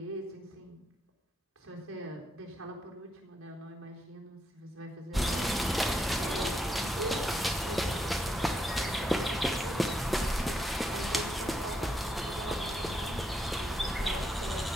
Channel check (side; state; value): both; normal; correlation 0.79